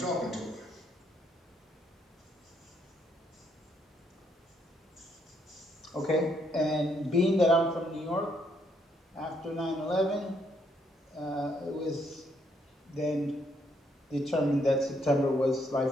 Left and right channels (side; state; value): both; normal; correlation 0.72